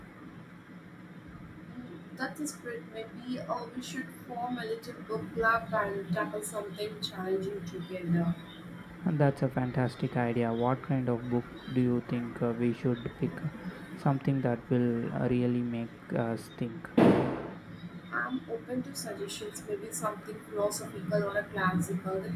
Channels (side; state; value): both; identical; correlation 1.00